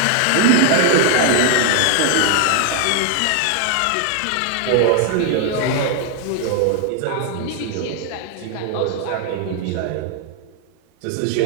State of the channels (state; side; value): different; both; correlation 0.00